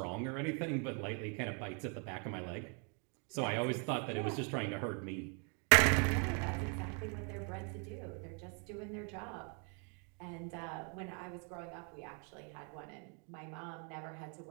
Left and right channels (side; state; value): left; quieter; 38.1 dB